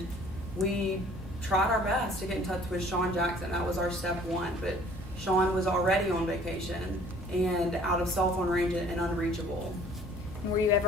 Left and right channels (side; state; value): both; normal; correlation 0.53